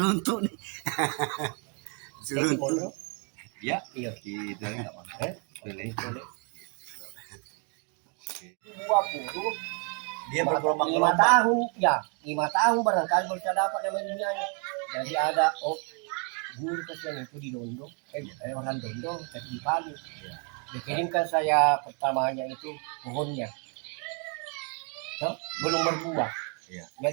nih seruntuk Ya, Iya. gitu enggak apa-apa. Boleh. Buah puluh Dia bergelombang 5 tahun ya 5 tahun barangkali bisa dapat namanya. Jadi ada guru kesian itu di Dondong orang Dondong tapi di Palu dikirimkan saya pertamanya itu pohonnya belum berbuah Iya.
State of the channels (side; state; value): left; quieter; 37.7 dB